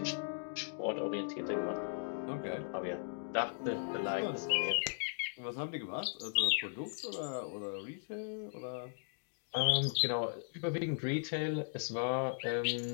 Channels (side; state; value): right; silent; digital silence